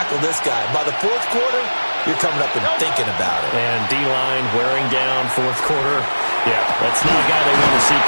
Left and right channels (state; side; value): inverted; both; correlation -1.00